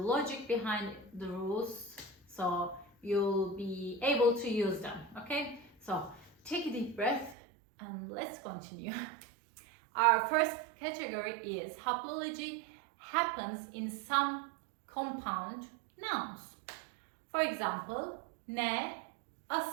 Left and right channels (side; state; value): left; drops out; at 7.4 s